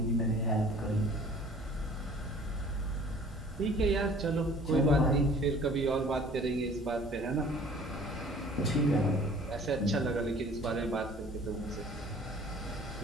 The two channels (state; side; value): normal; both; correlation 0.50